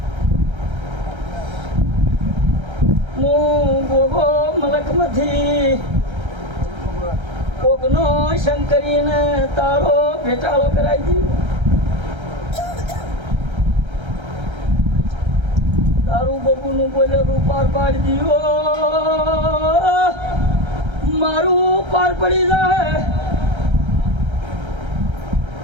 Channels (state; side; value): late; left; 1.3 ms